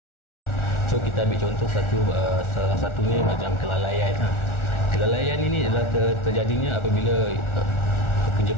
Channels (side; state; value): right; late; 1.4 ms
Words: So kita ambil contoh salah satunya macam kelalaian. Kelalaian ini adalah terjadinya apabila